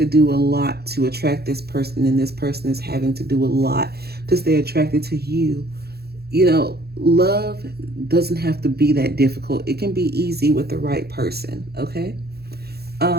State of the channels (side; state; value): left; late; 0.46 ms